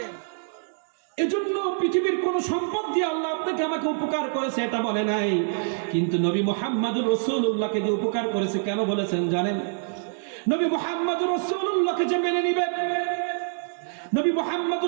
এজন্য পৃথিবীর কোন সম্পদ দিয়ে আল্লাহ আপনাকে আমাকে উপকার করেছে এটা বলে নাই। কিন্তু নবী মুহাম্মদুর রাসূলুল্লাহকে দিয়ে উপকার করেছে। কেন বলেছেন জানেন? নবী মুহাম্মদুর রাসূলুল্লাহকে যে মেনে নিবে, নবী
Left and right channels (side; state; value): left; silent; digital silence